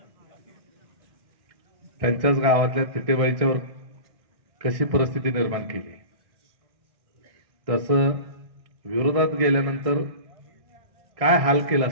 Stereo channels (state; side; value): late; left; 1.6 ms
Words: त्यांच्याच गावातल्या तिटेबाईच्यावर कशी परिस्थिती निर्माण केली, तसं विरोधात गेल्यानंतर काय हाल केला